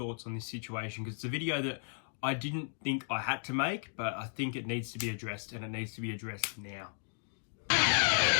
on this situation, because it's a video that I didn't think I had to make, but I think it needs to be addressed, and it needs to be addressed now.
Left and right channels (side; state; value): right; silent; digital silence